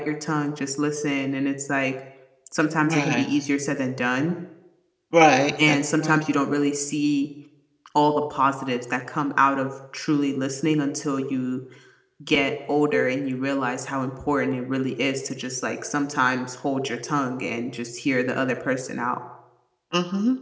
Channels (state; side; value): identical; both; correlation 1.00